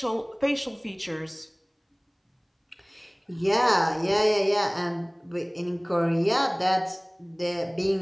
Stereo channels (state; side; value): identical; both; correlation 1.00